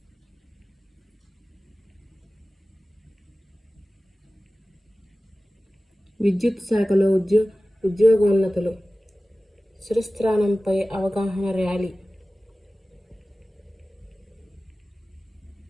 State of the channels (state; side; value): normal; both; correlation 0.96